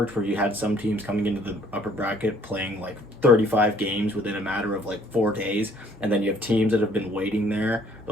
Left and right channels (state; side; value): normal; both; correlation 0.61